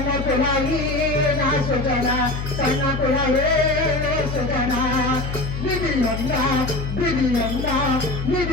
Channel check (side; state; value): left; noise; hum, 5 dB below the sound